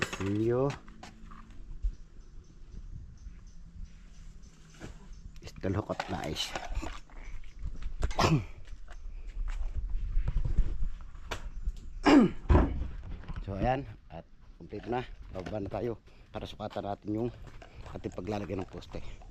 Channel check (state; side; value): identical; both; correlation 1.00